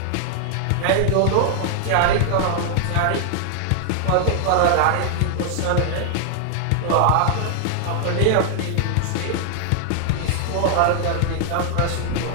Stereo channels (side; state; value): both; different; correlation 0.00